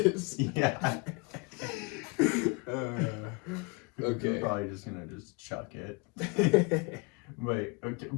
Yeah. You're Okay. probably just gonna just chuck it.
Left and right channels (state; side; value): quieter; right; 29.1 dB